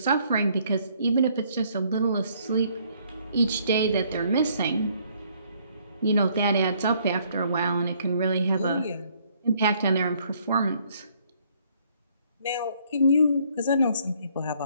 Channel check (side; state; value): both; inverted; correlation -0.65